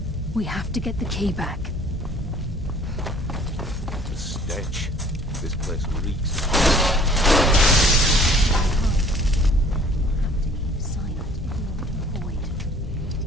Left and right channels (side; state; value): both; normal; correlation 0.53